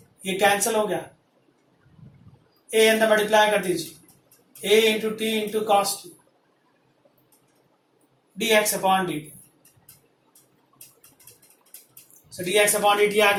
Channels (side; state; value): both; identical; correlation 1.00